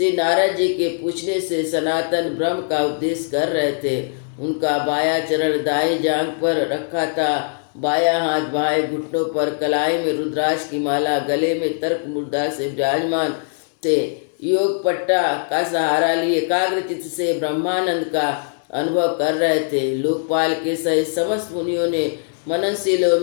नारद जी के पूछने से सनातन ब्रह्म का उपदेश कर रहे थे। उनका बाया चरण दाई जांघ पर रखा था, बाया हाथ बाएं घुटनों पर, कलाई में रुद्राक्ष की माला, गले में तर्क मुद्रा से विराजमान थे। योग पट्टा का सहारा लिए एकाग्र चित्त से ब्रह्मानंद का अनुभव कर रहे थे। लोकपाल के सहित समस्त मुनियों ने मननशीलों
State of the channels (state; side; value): silent; right; digital silence